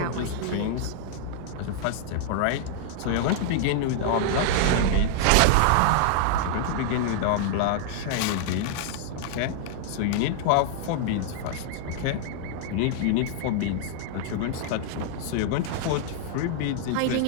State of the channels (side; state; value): both; different; correlation -0.01